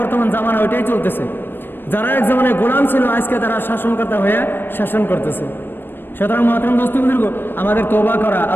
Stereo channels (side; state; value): right; late; 0.097 ms